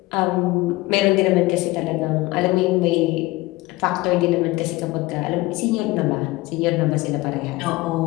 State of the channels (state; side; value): quieter; right; 20.6 dB